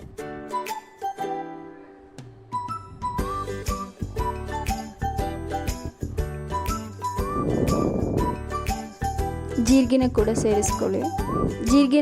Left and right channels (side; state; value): both; identical; correlation 1.00